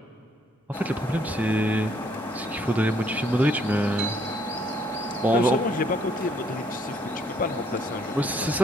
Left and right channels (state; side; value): normal; both; correlation 0.67